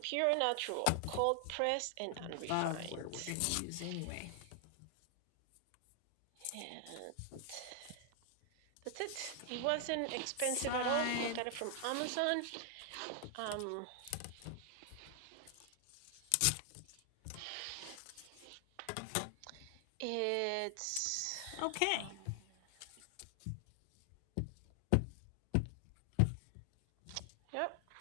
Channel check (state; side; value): different; both; correlation 0.00